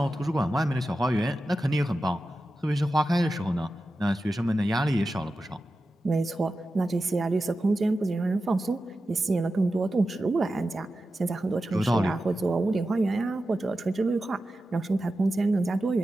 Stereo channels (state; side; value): normal; both; correlation 0.92